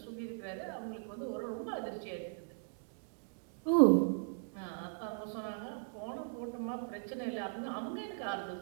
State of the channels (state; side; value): silent; left; digital silence